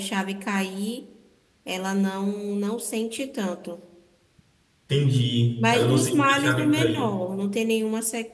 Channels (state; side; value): identical; both; correlation 1.00